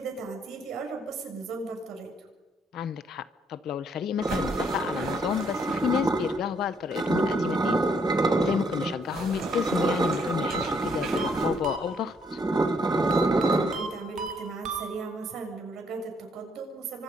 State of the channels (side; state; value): both; normal; correlation 0.69